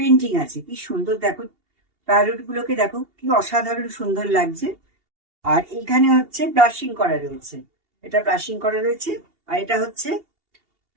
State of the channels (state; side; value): late; left; 2.8 ms